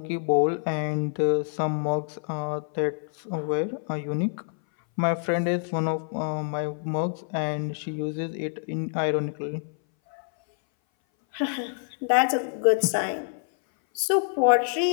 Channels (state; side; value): silent; right; 59 dB below the other